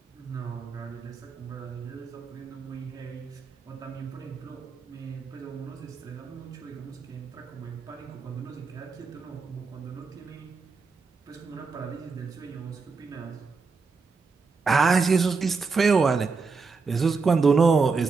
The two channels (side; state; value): left; quieter; 4.6 dB